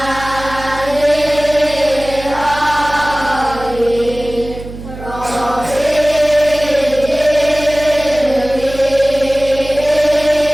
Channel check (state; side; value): noise; right; hum, 13 dB below the sound